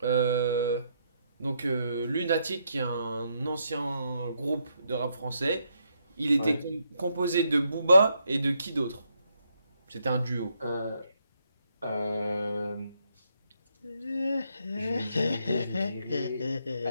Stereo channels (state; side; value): inverted; both; correlation -0.76